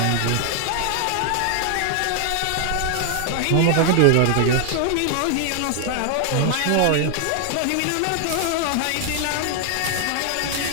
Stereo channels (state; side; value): different; both; correlation 0.00